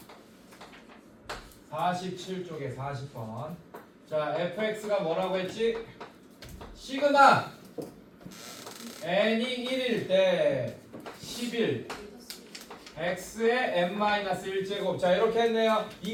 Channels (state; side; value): identical; both; correlation 1.00